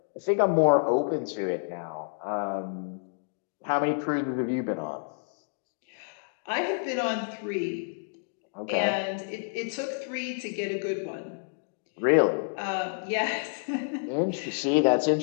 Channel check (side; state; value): right; silent; digital silence